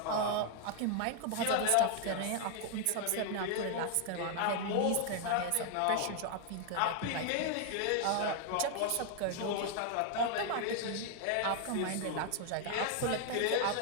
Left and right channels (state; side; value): different; both; correlation 0.00